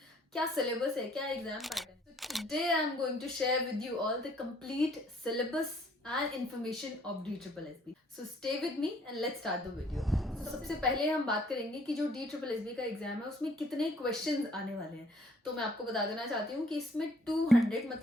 क्या सिलेबस है, क्या एग्जाम पैटर्न। तो today I am going to share with you all the complete syllabus and information of DSSB. So stay with me and let's start the video. तो सबसे पहले हम बात करेंगे कि जो DSSB का एग्जाम है उसमें कितने क्वेश्चंस आने वाले हैं। तो मैं आपको बता देना चाहती हूँ कि इसमें 200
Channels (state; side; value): normal; both; correlation 0.61